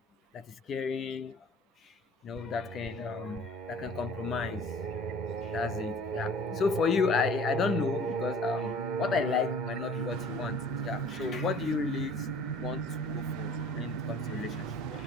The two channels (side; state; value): both; normal; correlation 0.48